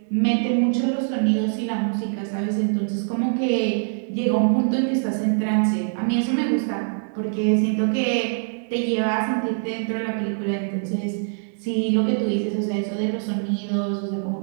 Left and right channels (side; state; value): left; silent; digital silence